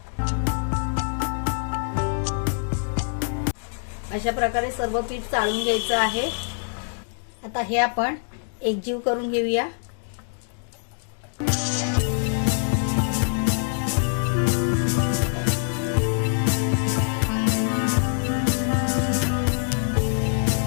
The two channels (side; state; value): right; silent; digital silence